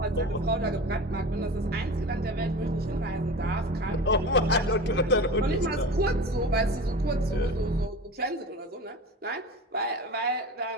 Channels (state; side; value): normal; both; correlation 0.33